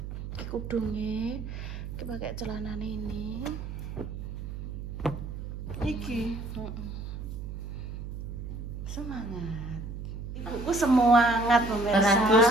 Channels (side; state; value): right; noise; hum, 7 dB below the sound